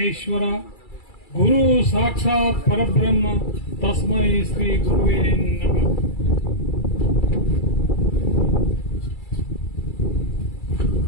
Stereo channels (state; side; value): late; right; 2.3 ms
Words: ಗುರು ಸಾಕ್ಷಾತ್ ಪರಬ್ರಹ್ಮ ತಸ್ಮೈ ಶ್ರೀ ಗುರುವೇ ನಮಃ.